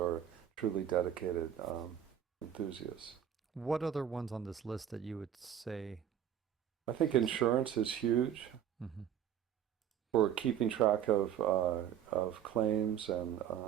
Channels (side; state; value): left; quieter; 9.7 dB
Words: truly dedicated enthusiasts. What other ones on this list that you would say I think is? insurance is huge Hmm. for keeping track of claims, and